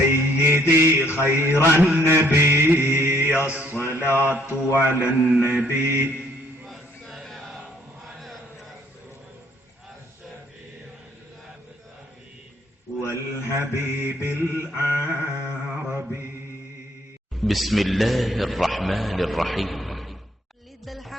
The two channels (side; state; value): both; normal; correlation 0.64